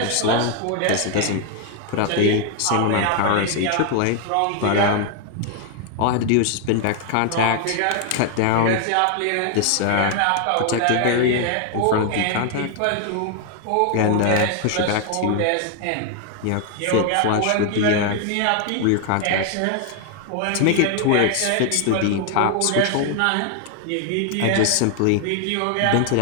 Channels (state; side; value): different; both; correlation 0.00